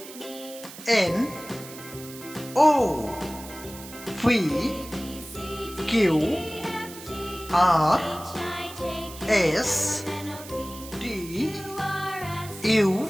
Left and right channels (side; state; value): right; noise; hiss, 15 dB below the sound